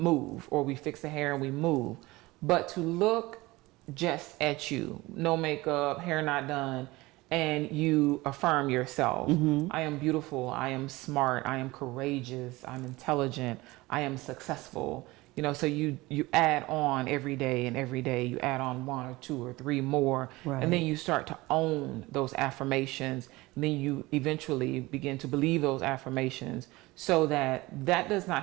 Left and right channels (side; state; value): left; quieter; 20.7 dB